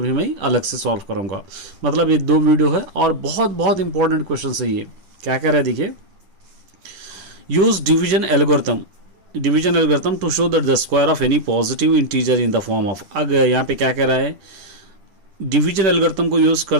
भी मैं अलग से सॉल्व करूंगा। मतलब ये दो वीडियो है और बहुत बहुत इंपॉर्टेंट क्वेश्चन है ये। क्या कह रहा है देखिए, use division algorithm to show that the square of any positive integer in the form of. अगर यहाँ पे क्या कह रहा है, डिवीजन एल्गोरिथम को यूज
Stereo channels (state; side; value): late; left; 10 ms